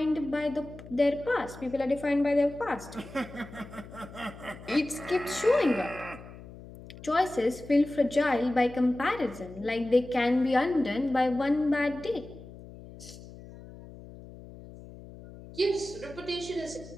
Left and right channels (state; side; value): noise; left; hum, 16 dB below the sound